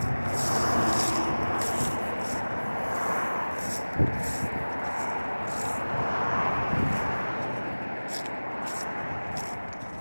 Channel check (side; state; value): both; inverted; correlation -1.00